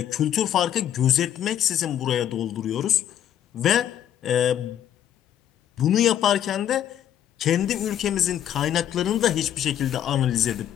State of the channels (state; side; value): quieter; right; 10.5 dB